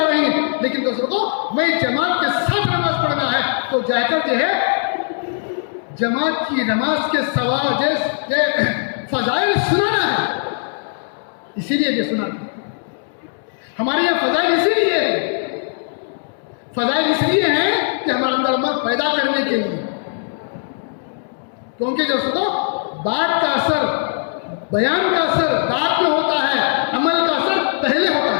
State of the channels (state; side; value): silent; right; 66 dB below the other